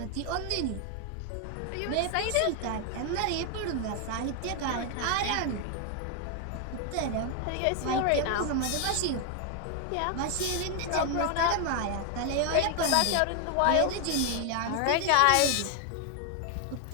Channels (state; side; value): different; both; correlation 0.00